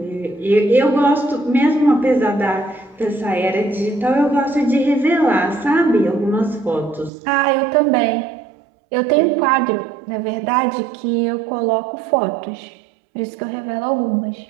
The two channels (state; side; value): drops out; left; at 7.1 s